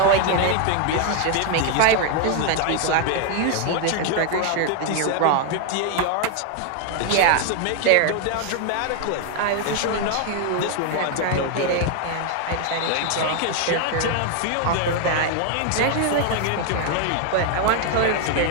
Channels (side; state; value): both; different; correlation 0.00